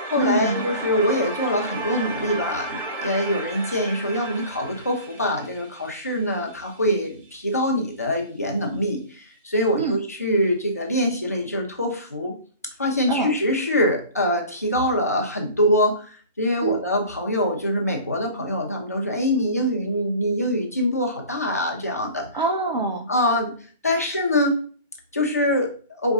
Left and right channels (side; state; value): both; inverted; correlation -0.41